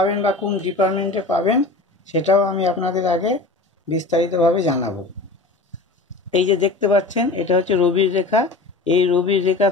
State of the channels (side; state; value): right; quieter; 3.3 dB